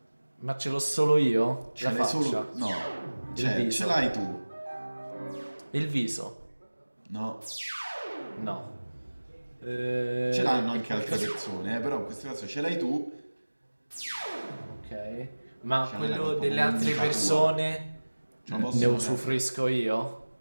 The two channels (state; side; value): inverted; both; correlation -1.00